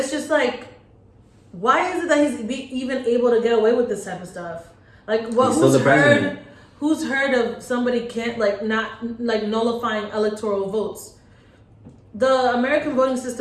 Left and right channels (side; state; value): both; identical; correlation 1.00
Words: just like, why is it that he's even able to get away with this type of stuff? Like, what? Who's heard of somebody can't not nullifying electoral votes? The American voting